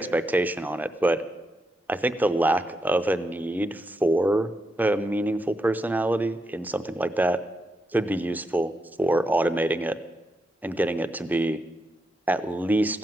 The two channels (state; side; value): normal; both; correlation 0.83